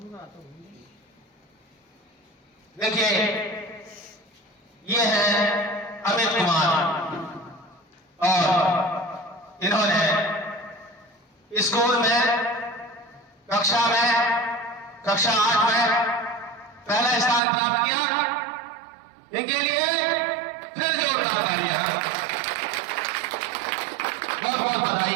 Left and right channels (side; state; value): left; drops out; at 17.4 s